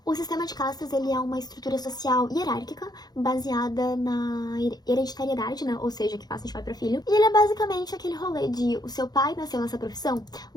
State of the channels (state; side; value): late; right; 0.19 ms